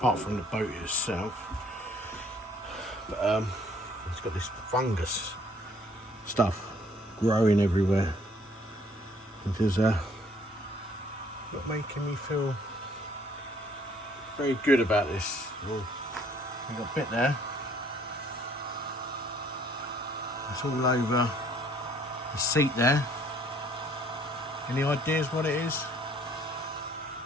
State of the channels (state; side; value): normal; both; correlation 0.61